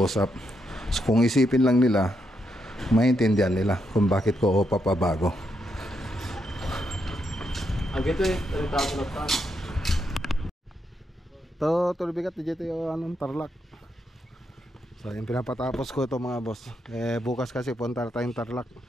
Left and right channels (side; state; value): both; normal; correlation 0.80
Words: So kung isipin lang nila, maintindihan nila kung bakit ko papabago. Agito Tulbigat dito yung Tarlac. So yung pinapatapos ko ito mga boss. Bukas kasi punta tayong Tarlac